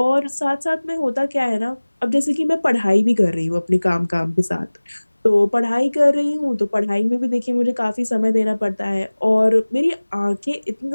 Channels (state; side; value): inverted; both; correlation -1.00